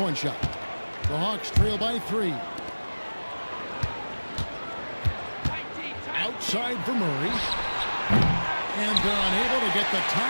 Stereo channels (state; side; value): inverted; both; correlation -1.00